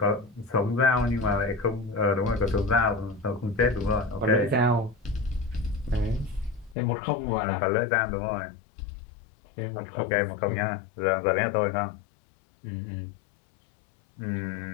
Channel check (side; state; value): right; drops out; at 6.8 s